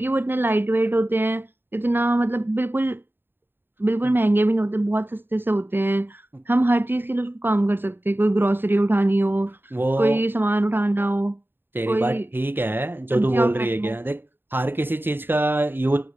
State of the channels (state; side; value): late; left; 0.099 ms